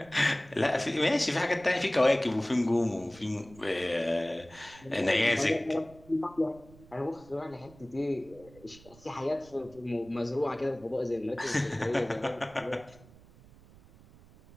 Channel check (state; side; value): noise; right; rumble, 23 dB below the sound